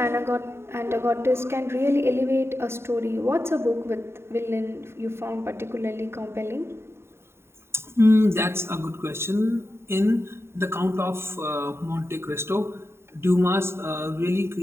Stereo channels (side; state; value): left; late; 0.12 ms